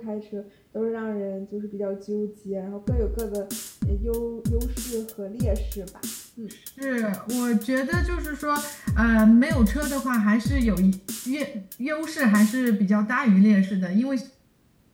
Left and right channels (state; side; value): identical; both; correlation 1.00